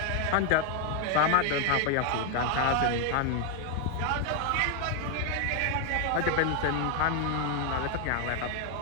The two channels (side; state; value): both; different; correlation 0.01